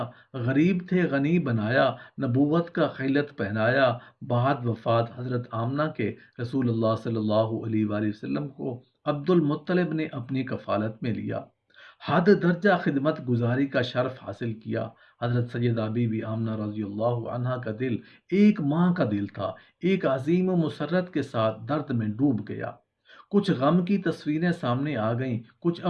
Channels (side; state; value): both; identical; correlation 1.00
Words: غریب تھے غنی بنایا، نبوت کا خلعت پہنایا۔ بعد وفات حضرت آمنہ کے رسول اللہ صلی اللہ علیہ وآلہ وسلم کو عبد المطلب نے اپنی کفالت میں لیا، حد درجہ خدمت گزاری کا شرف حاصل کیا۔ حضرت سیدہ بی بی آمنہ رضی اللہ عنہا کا دل ایک ماں کا دل تھا، ایک عظیم و مسرت کے ساتھ درد میں ڈوب گیا۔ کچھ غم کی تصویریں سامنے آ گئیں، کچھ